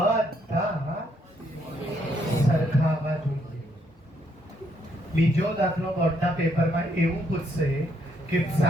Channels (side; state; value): both; normal; correlation 0.73